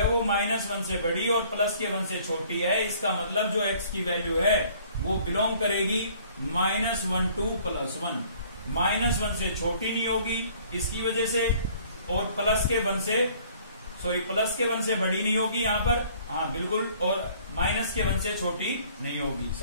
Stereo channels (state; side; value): inverted; both; correlation -0.57